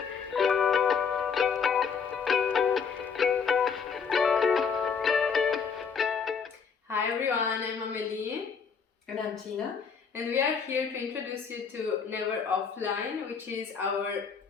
Hi everyone, I'm Amelie. And I'm Tina. And we are here to introduce you to Never Offline, which is our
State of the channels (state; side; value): quieter; right; 6.1 dB